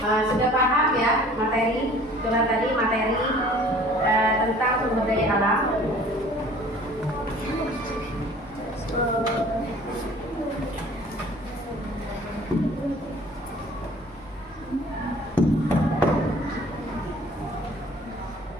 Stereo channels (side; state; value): both; normal; correlation 0.50